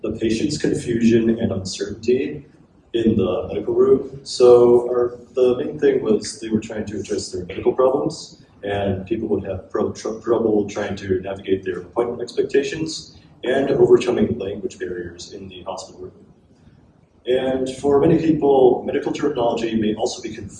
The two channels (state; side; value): identical; both; correlation 1.00